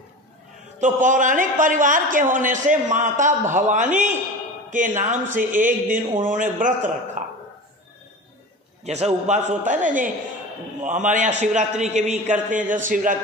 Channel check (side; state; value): both; normal; correlation 0.32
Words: तो पौराणिक परिवार के होने से माता भवानी के नाम से एक दिन उन्होंने व्रत रखा। जैसा उपवास होता है ना, जो हमारे यहाँ शिवरात्रि के भी करते हैं, जैसे